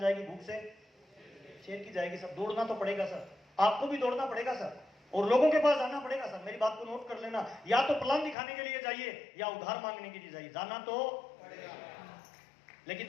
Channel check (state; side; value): drops out; right; at 8.3 s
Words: भूख से शेर की जाएगी सर। दौड़ना तो पड़ेगा सर, आपको भी दौड़ना पड़ेगा सर, और लोगों के पास जाना पड़ेगा सर। मेरी बात को नोट कर लेना, या तो प्लान दिखाने के लिए जाइए या उधार मांगने के लिए जाइए, जाना तो लेकिन